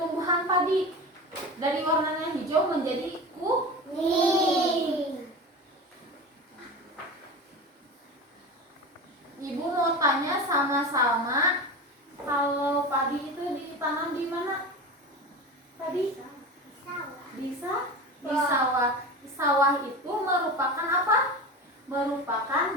padi dari warnanya hijau menjadi kuning. Ibu mau tanya sama-sama, kalau padi itu ditanam di mana? Tadi? Di sawah. Sawah itu merupakan apa? Merupakan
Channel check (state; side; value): normal; both; correlation 0.29